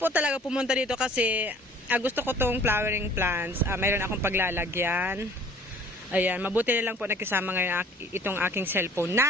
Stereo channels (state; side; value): normal; both; correlation 0.52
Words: talaga pumunta dito kasi gusto ko tong flowering plants. Mayroon akong paglalagyan. Ayan, mabuti na lang po nakisama ngayon itong aking cellphone.